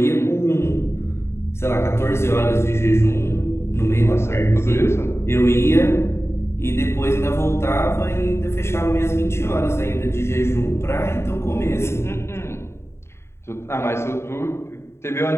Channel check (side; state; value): right; late; 0.13 ms